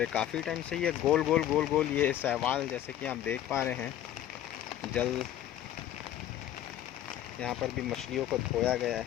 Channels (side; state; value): right; quieter; 12.0 dB